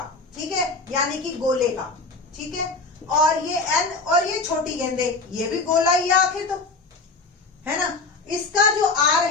ठीक है, यानी कि गोले का, ठीक है, और ये n और ये छोटी गेंदे, ये भी गोला ही है आखिर, तो है ना। इसका जो r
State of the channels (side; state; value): right; quieter; 3.7 dB